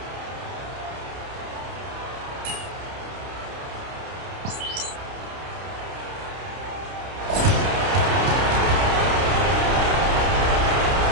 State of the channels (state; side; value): late; left; 30 ms